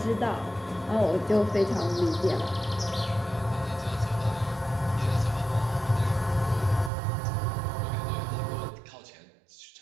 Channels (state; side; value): drops out; left; at 6.9 s